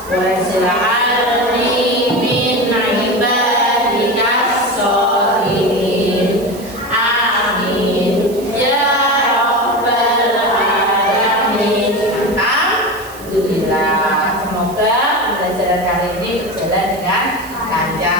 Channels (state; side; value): noise; right; hiss, 19 dB below the sound